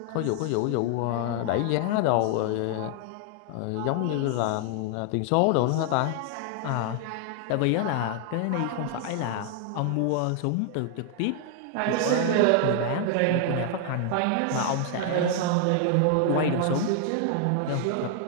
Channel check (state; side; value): different; both; correlation 0.00